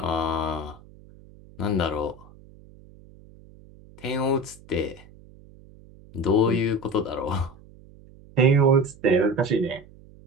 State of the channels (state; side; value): noise; right; hum, 23 dB below the sound